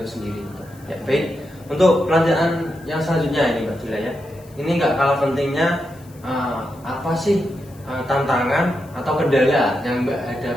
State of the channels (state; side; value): noise; left; hiss, 27 dB below the sound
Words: sendiri. Ya, baik. Untuk pelajaran yang selanjutnya ini Mbak Dila ya, ini nggak kalah pentingnya, apa sih tantangan atau kendala yang Mbak